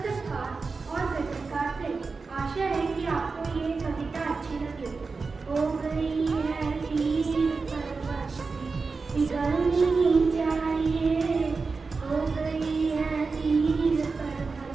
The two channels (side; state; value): left; quieter; 4.4 dB